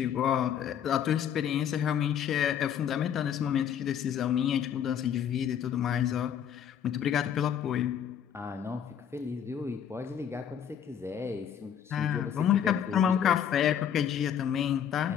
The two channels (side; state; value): right; quieter; 9.0 dB